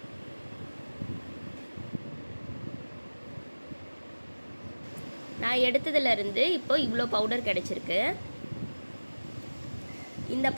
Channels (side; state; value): both; inverted; correlation -1.00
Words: நான் எடுத்ததுலேருந்து இப்போ இவ்வளோ பவுடர் கிடச்சிருக்கு. இந்த